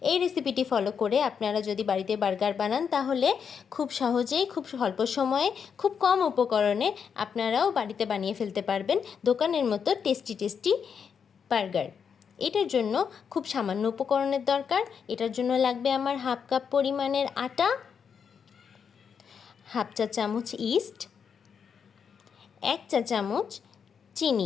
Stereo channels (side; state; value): right; quieter; 6.8 dB